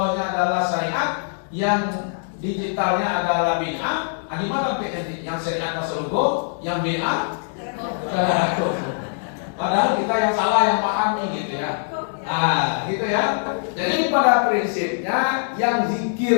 adalah syariat, yang digitalnya adalah bid'ah. Di mana yang syariat Rasulullah, yang bid'ah? Padahal kita yang salah yang pahami gitu ya. Gitu ya. Jadi pada prinsipnya yang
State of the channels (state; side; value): silent; right; digital silence